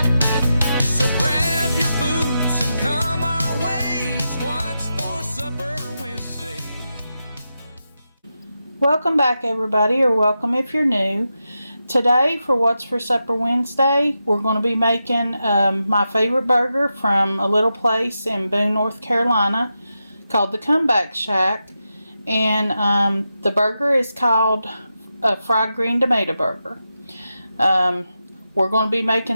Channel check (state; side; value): inverted; both; correlation -0.89